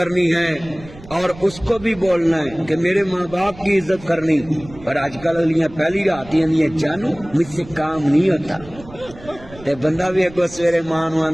ہے، اور اس کو بھی بولنا ہے کہ میرے ماں باپ کی عزت کرنی۔ پر آج کل اگلیاں پہلی رات ہیں جانو مجھ سے کام نہیں ہوتا، تے بندہ بھی اگو سویرے ماں نو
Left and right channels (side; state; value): right; noise; rumble, 19 dB below the sound